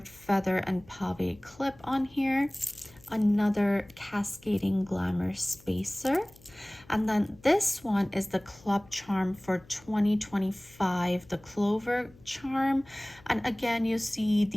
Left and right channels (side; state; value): left; noise; hum, 26 dB below the sound